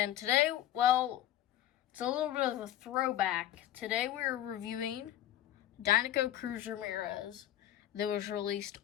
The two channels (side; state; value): right; quieter; 12.4 dB